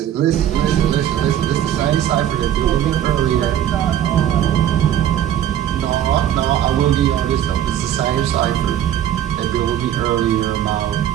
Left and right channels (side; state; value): left; quieter; 10.9 dB